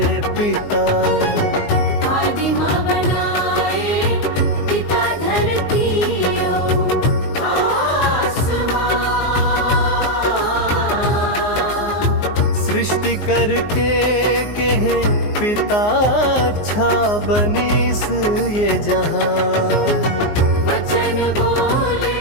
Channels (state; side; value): late; right; 19 ms